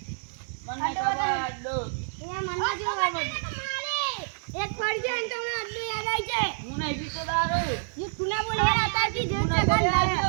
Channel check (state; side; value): silent; left; 59 dB below the other